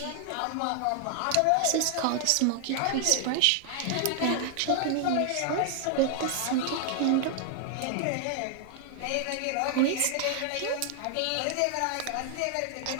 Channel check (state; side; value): different; both; correlation 0.00